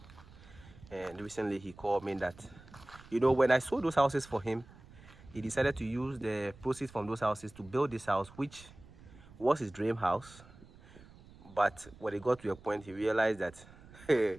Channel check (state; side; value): noise; right; rumble, 21 dB below the sound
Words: And recently he called me that, when I sold those houses for him, he decided to use the proceeds from those houses to build this house, which was his dream house. But when he got to a point, he realized that